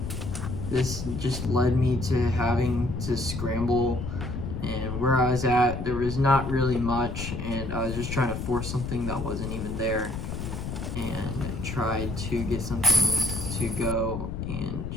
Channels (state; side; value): noise; left; rumble, 5 dB below the sound